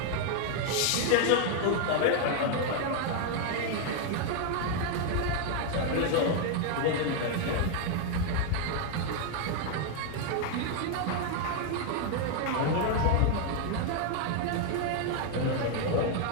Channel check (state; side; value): different; both; correlation 0.00